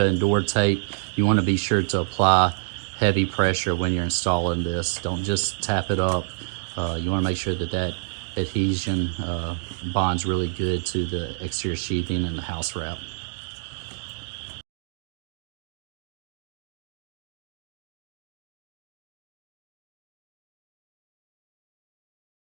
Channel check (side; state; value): left; silent; digital silence